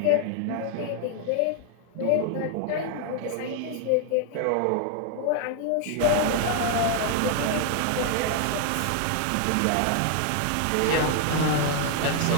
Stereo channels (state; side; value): different; both; correlation 0.00